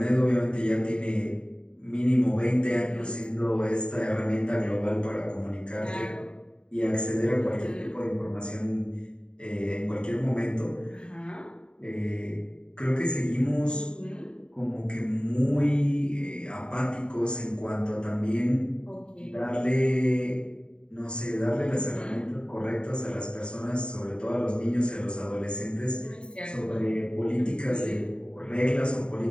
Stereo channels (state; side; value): late; right; 0.051 ms